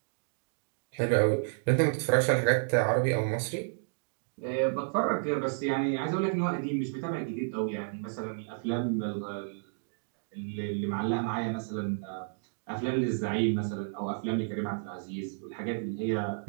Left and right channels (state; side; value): silent; left; digital silence